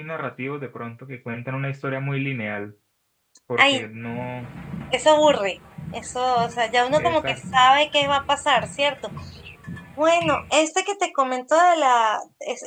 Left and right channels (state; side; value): identical; both; correlation 1.00